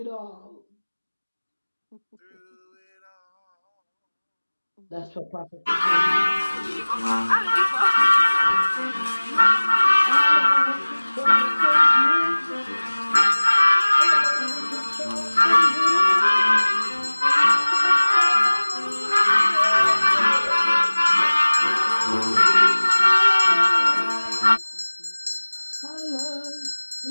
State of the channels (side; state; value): both; inverted; correlation -1.00